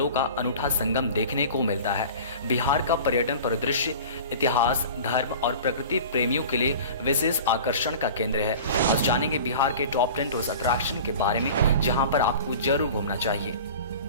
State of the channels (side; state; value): both; inverted; correlation -0.39